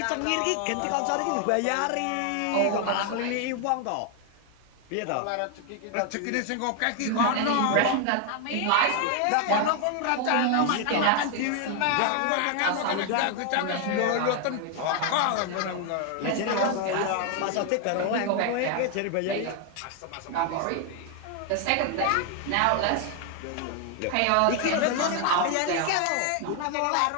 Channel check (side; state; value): both; different; correlation 0.01